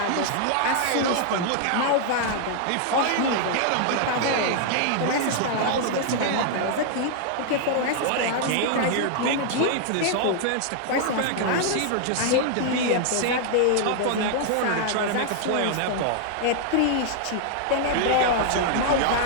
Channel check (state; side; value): different; both; correlation -0.01